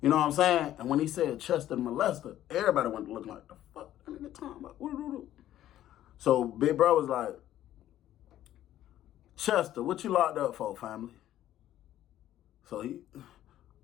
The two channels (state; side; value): quieter; right; 12.7 dB